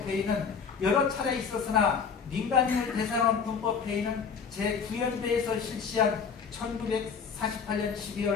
여러 차례 있었으나 민간인을 대상으로 한 군법회의는 제9연대에서 실시한 1948년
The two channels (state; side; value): quieter; right; 6.1 dB